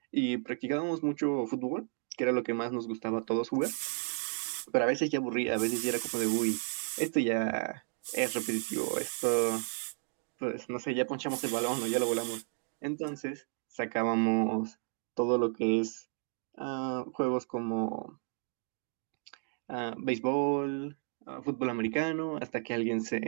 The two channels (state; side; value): silent; left; 56 dB below the other